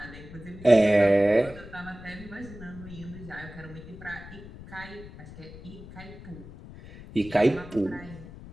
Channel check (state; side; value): noise; left; rumble, 15 dB below the sound